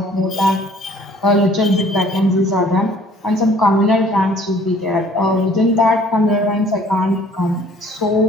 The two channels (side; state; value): both; normal; correlation 0.55